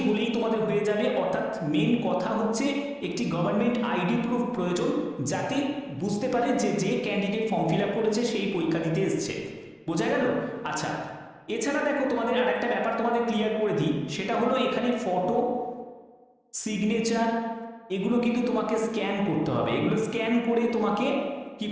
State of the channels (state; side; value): identical; both; correlation 1.00